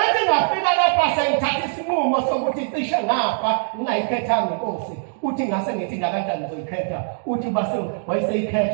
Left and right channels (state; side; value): silent; left; digital silence